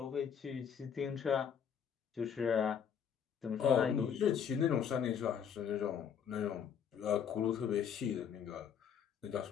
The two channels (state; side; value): quieter; right; 7.9 dB